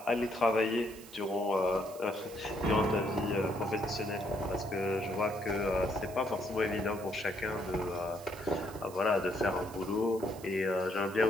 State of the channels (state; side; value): noise; right; hiss, 19 dB below the sound